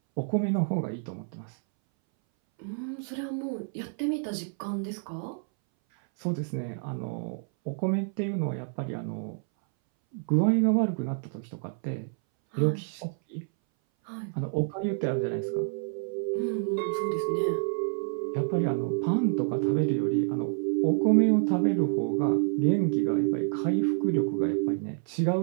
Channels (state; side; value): silent; left; 59 dB below the other